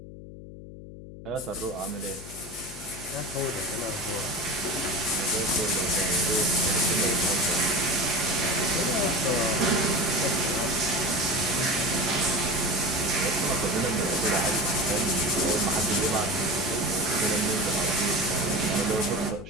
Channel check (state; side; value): noise; left; hum, 14 dB below the sound